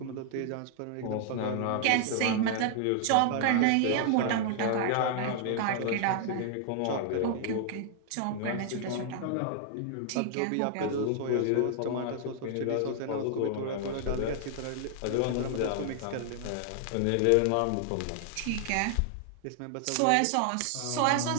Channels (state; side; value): different; both; correlation 0.00